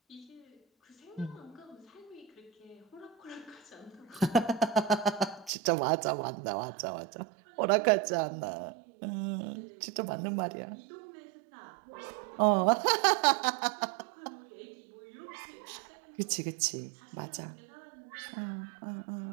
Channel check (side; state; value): left; drops out; at 5.5 s